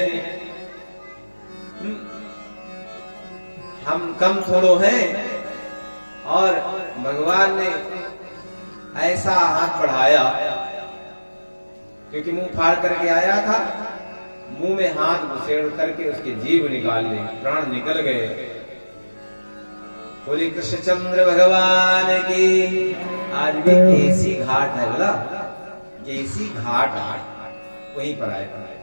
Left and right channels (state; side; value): inverted; both; correlation -1.00